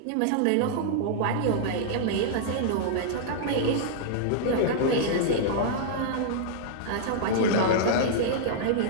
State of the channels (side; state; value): both; different; correlation -0.02